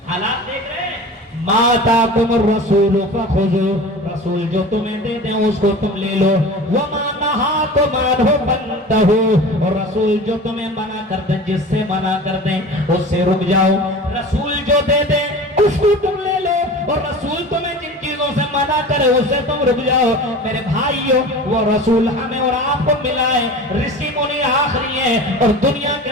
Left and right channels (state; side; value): normal; both; correlation 0.36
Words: حالات دیکھ رہے ہیں۔ ما آتاکم الرسول فخذوا، رسول جو تمہیں دے دیں اس کو تم لے لو، وما نہاکم عنہ فانتہوا، اور رسول جو تمہیں منع کر دیں، جس سے منع کر دیں اس سے رک جاؤ۔ رسول جو دے دیں اس کو تم لے لو، اور رسول تمہیں جن چیزوں سے منع کرے اس سے تم رک جاؤ۔ میرے بھائیوں وہ رسول ہمیں اور آپ کو ملا ہے، رشی منی آخری ہے، اور دنیا کے